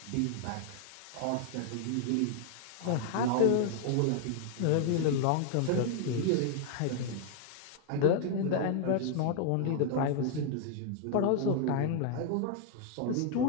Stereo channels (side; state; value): both; different; correlation 0.00